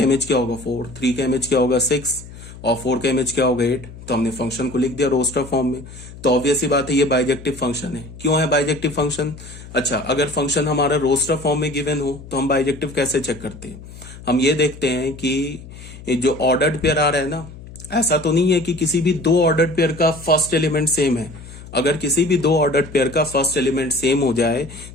इमेज क्या होगा 4, 3 का इमेज क्या होगा 6, और 4 का इमेज क्या होगा 8। तो हमने फंक्शन को लिख दिया रोस्टर फॉर्म में। तो ऑब्वियस ही बात है ये बाइजेक्टिव फंक्शन है। क्यों है बाइजेक्टिव फंक्शन? अच्छा, अगर फंक्शन हमारा रोस्टर फॉर्म में गिवन हो तो हम बाइजेक्टिव कैसे चेक करते हैं? हम ये देखते हैं कि जो ऑर्डर्ड पेयर आ रहा है ना, ऐसा तो नहीं है कि किसी भी दो ऑर्डर्ड पेयर का फर्स्ट एलिमेंट सेम है। अगर किसी भी दो ऑर्डर्ड पेयर का फर्स्ट एलिमेंट सेम हो जाए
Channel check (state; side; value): noise; left; hum, 16 dB below the sound